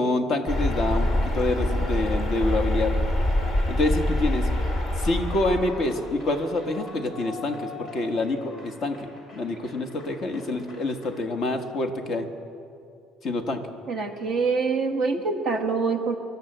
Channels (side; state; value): both; normal; correlation 0.73